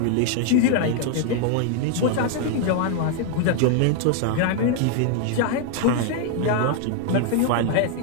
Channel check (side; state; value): both; different; correlation 0.00